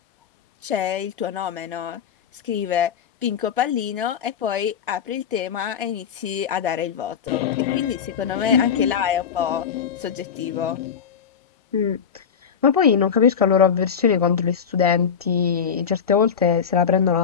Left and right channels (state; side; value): quieter; right; 7.3 dB